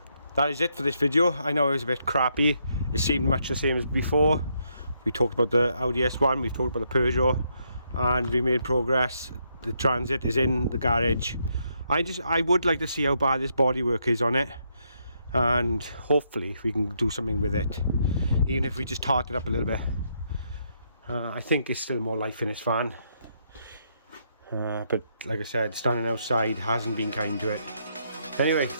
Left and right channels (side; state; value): both; inverted; correlation -0.76